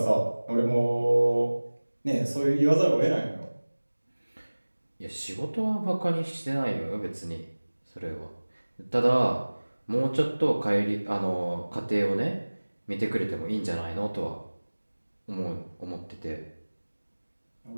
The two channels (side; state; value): both; inverted; correlation -1.00